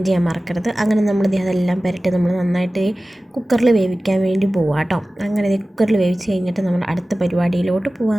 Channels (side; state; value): both; normal; correlation 0.96